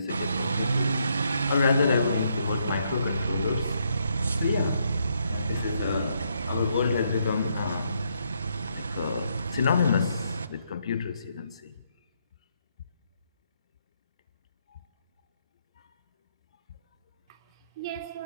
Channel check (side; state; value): both; inverted; correlation -0.75